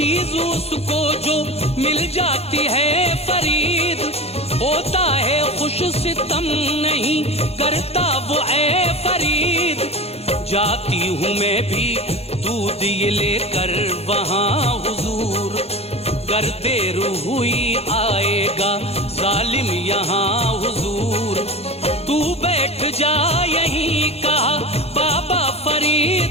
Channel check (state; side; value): late; right; 0.30 ms